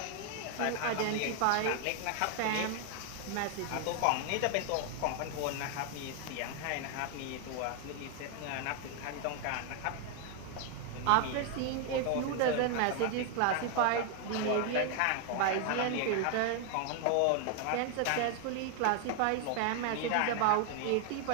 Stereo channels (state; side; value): different; both; correlation 0.00